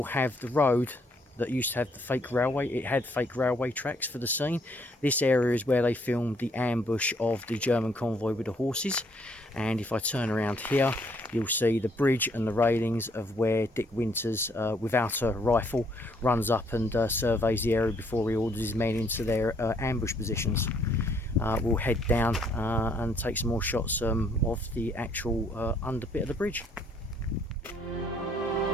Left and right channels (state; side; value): normal; both; correlation 0.67